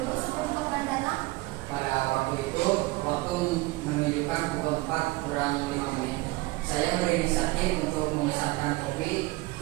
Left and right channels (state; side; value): quieter; left; 21.6 dB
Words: sebelum korban datang? Pada waktu itu, waktu waktu menunjukkan pukul 4 kurang 5 menit. Saya berinisiatif untuk memesankan kopi